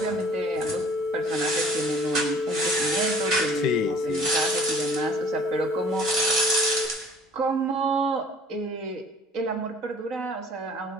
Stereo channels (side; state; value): both; normal; correlation 0.51